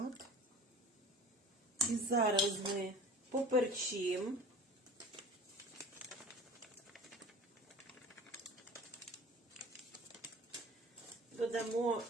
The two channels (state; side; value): normal; both; correlation 0.42